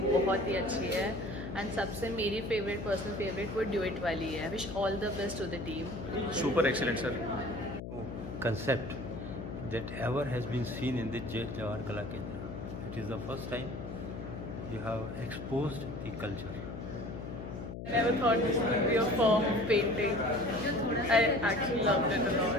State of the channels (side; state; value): left; noise; hum, 8 dB below the sound